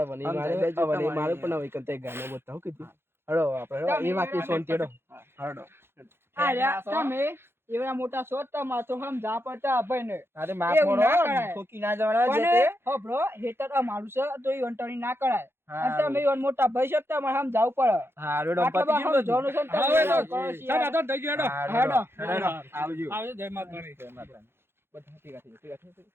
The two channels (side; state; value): left; late; 0.11 ms